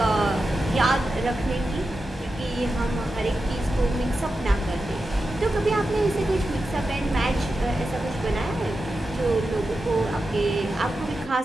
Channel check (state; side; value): normal; both; correlation 0.90